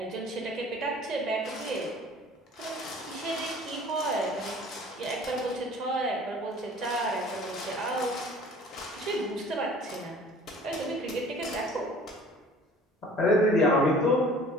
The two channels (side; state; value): both; normal; correlation 0.48